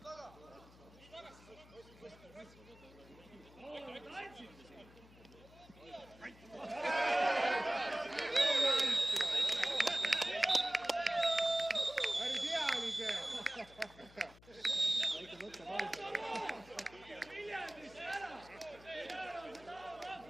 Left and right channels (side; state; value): left; noise; hum, 23 dB below the sound